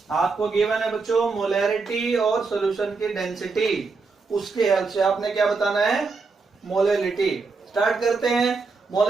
आपको गिवन है बच्चों मोलैरिटी और सॉल्यूशन की डेंसिटी, उसके हेल्प से आपने क्या बताना है, मोलैलिटी। स्टार्ट करते हैं।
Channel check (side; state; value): left; quieter; 4.4 dB